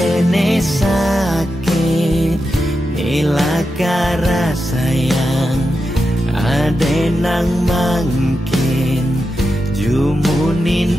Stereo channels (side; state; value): both; normal; correlation 0.89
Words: sakit nilakara sayang ade nang mangkin